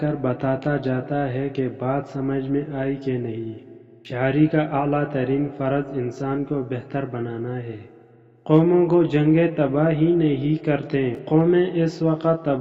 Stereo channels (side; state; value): both; identical; correlation 1.00